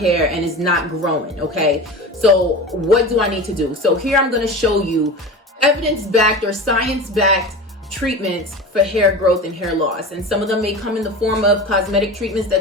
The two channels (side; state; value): both; normal; correlation 0.31